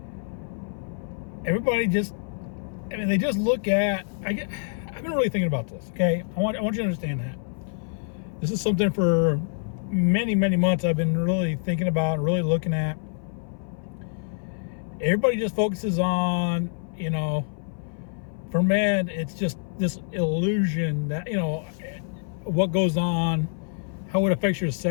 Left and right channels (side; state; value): right; silent; 58 dB below the other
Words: everybody they just look at, I've been really thinking about this, okay? I want you to understand that. This is something for many months I've been really thinking about, really looking at. Everybody just focuses on, for men, it's just this illusion that, what goes on, how it affects your